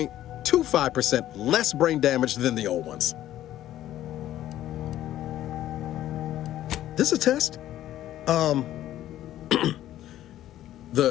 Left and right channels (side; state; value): right; quieter; 13.0 dB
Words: less brain damage than the old ones. This a test? The